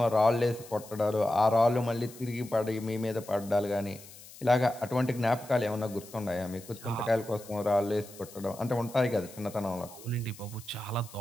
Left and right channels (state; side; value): noise; left; hiss, 19 dB below the sound